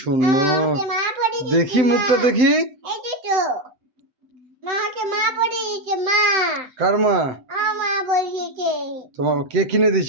সুন্দর, দেখি মুখটা দেখি। কার মা? তোমার কে কিনে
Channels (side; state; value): left; late; 7.9 ms